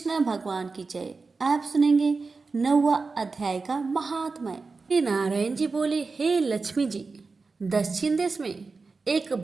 भगवान की जय। आप सुनेंगे 9वां अध्याय का महात्म्य। श्री नारायण जी बोले, हे लक्ष्मी जी, दक्षिण देश में एक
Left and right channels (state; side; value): quieter; left; 4.2 dB